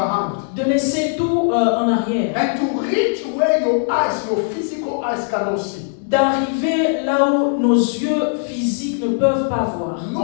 de laisser tout en arrière, and to reach where your eyes, your physical eyes cannot see. d'arriver là où nos yeux physiques ne peuvent pas voir.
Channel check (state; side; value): silent; right; digital silence